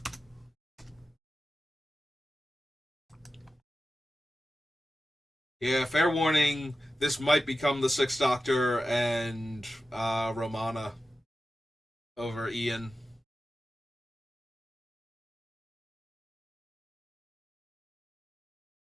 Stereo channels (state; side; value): normal; both; correlation 0.93